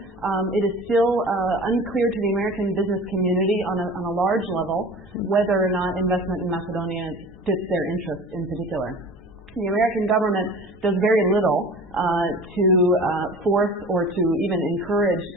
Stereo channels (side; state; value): both; normal; correlation 0.40